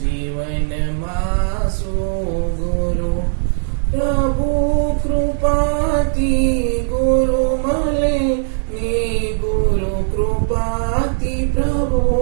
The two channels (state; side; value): silent; left; digital silence